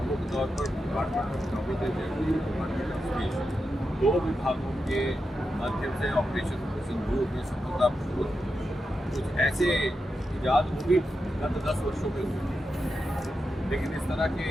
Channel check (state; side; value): normal; both; correlation 0.88